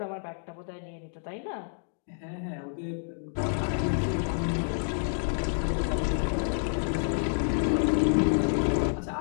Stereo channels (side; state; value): right; silent; digital silence